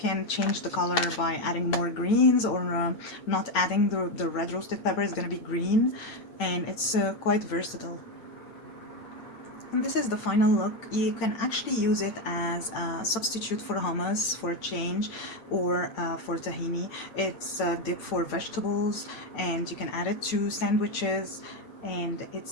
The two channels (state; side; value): late; right; 8.9 ms